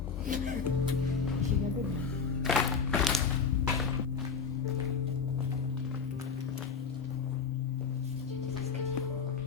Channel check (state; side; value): quieter; right; 5.9 dB